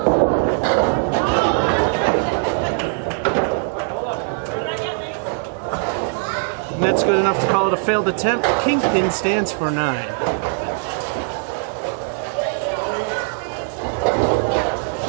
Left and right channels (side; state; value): left; silent; 61 dB below the other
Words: And that's good enough to call it a failed attempt. Kingpin stands for 9.